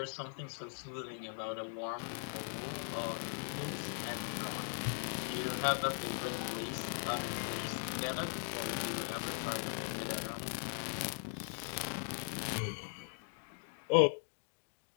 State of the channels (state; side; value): silent; right; digital silence